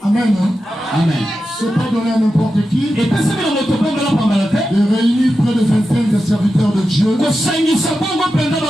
Amen. Amen. Ce n'est pas donné à n'importe qui de réunir près de 25 des serviteurs de Dieu, des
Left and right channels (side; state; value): both; normal; correlation 0.91